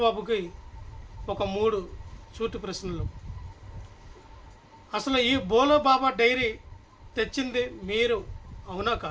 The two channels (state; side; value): identical; both; correlation 1.00